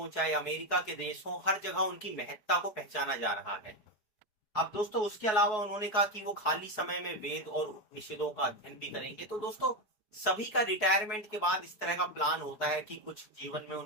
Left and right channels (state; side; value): late; right; 4.7 ms